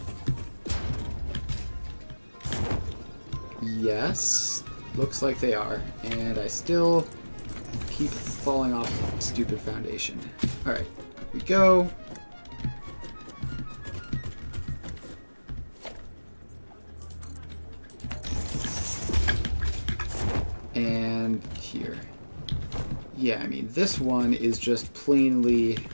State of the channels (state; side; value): inverted; both; correlation -1.00